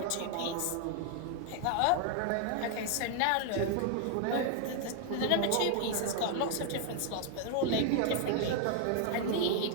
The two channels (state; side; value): different; both; correlation 0.00